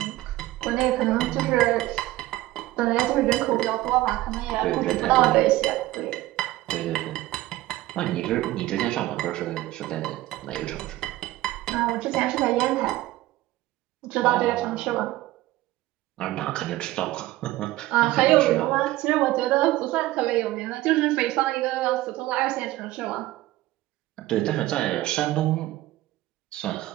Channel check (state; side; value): quieter; left; 16.9 dB